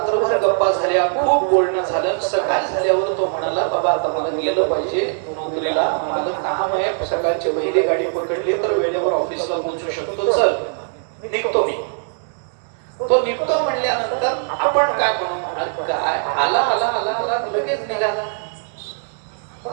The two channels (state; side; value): silent; left; digital silence